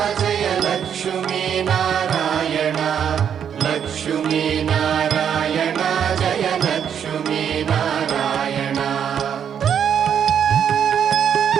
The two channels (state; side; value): quieter; left; 8.4 dB